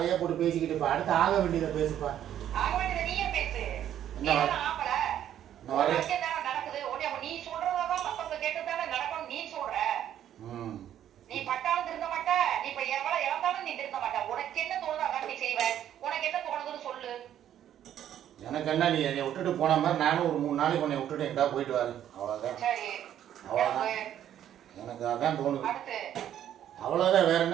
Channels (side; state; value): left; quieter; 10.8 dB